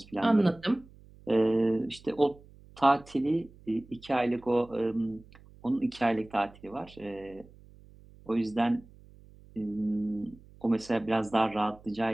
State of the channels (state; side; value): noise; right; hum, 24 dB below the sound